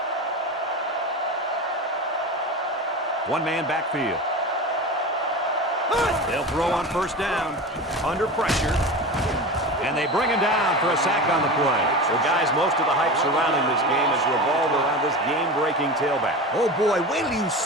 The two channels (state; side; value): normal; both; correlation 0.28